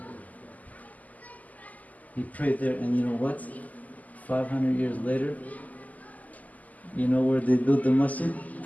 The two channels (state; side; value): late; right; 0.078 ms